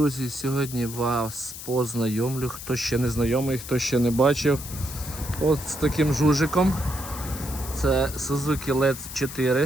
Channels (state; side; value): noise; left; hiss, 11 dB below the sound